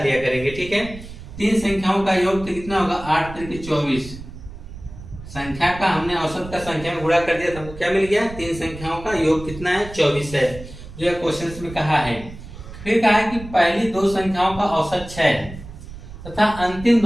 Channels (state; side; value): noise; right; rumble, 14 dB below the sound